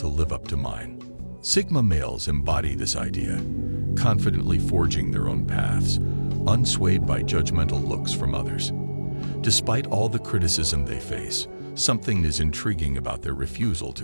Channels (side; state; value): both; inverted; correlation -1.00